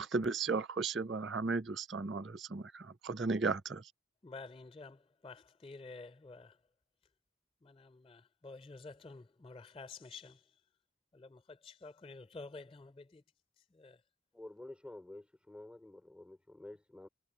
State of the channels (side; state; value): left; quieter; 3.2 dB